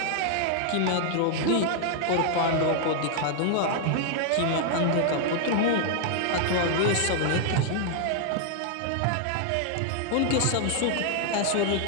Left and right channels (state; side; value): different; both; correlation 0.00